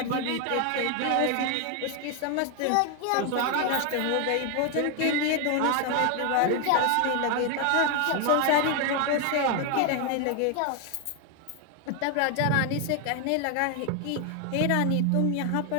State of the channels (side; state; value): both; different; correlation 0.01